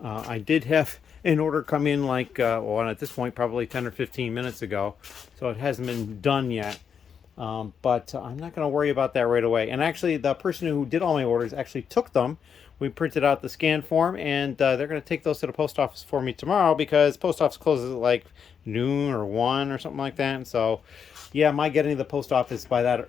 I did have an order come in like, well, at this point, probably 10 or 15 minutes ago, so it hasn't been done yet. But I'm not going to worry about that right away. And actually, the person who did all my orders actually took them. We printed out the scan form, and they're going to take those to the post office for me tomorrow because post office closes at like noon or 1 or something like that. And so, yeah, my getting to the post office by that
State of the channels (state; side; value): quieter; right; 7.2 dB